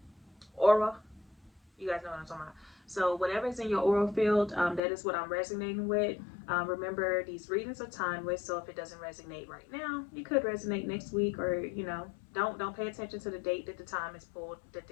guys know what I'm talking about. So whatever's in your aura field, that is what I'm resonating with. Remember, these readings are timeless, so if it doesn't resonate right now, it could resonate next week, or you know, don't pay attention to the date that the time is pulled, that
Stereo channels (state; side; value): drops out; right; at 4.8 s